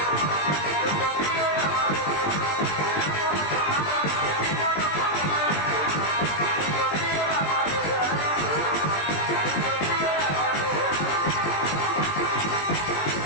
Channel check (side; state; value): right; late; 20 ms